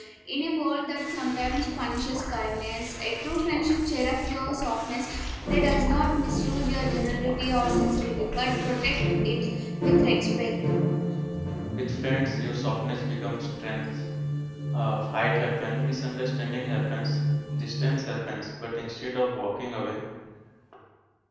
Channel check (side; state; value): both; identical; correlation 1.00